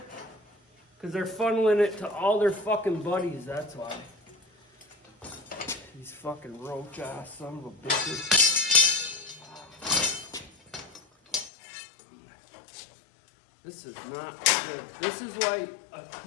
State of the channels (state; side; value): drops out; right; at 11.5 s